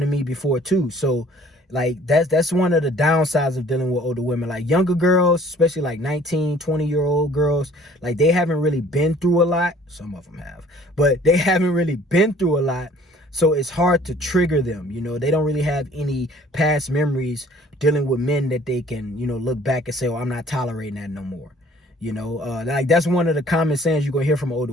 to me before too. So like that's one of the downsides of dealing with older women. Like younger girls, especially like 19, 20-year-old girls, like they haven't really been through a lot. Some of them have, but they haven't really been through a lot. So it's hard to trigger them. You know, they don't really have any past memories dealing with men that they can, you know, look back and say, oh, I'm not tolerating that no more. You know, like that's one of the common sayings you're gonna hear from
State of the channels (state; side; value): normal; both; correlation 0.54